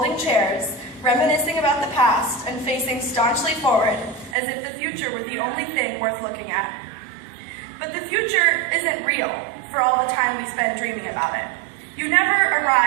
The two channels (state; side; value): drops out; left; at 4.4 s